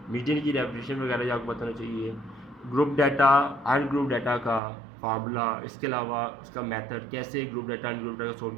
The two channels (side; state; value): left; drops out; at 4.6 s